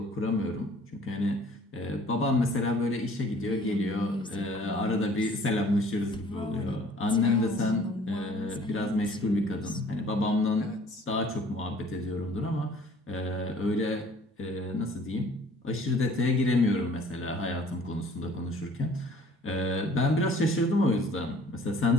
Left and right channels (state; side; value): normal; both; correlation 0.53